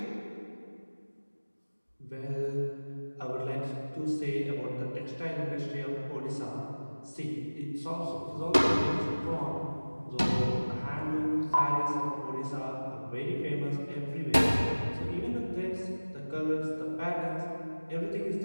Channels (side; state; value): both; inverted; correlation -1.00